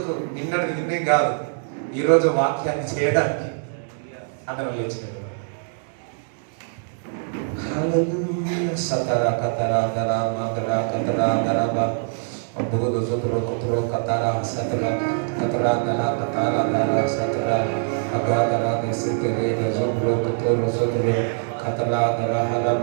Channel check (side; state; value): left; silent; 63 dB below the other